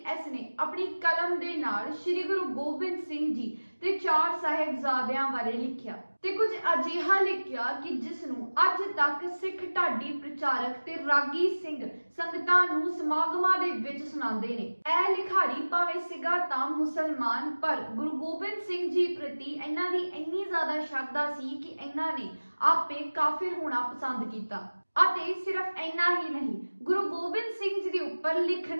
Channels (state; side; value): inverted; both; correlation -1.00